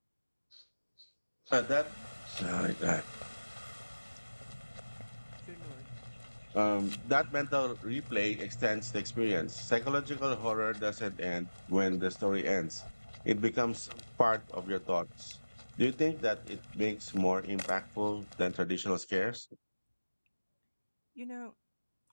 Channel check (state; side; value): inverted; both; correlation -1.00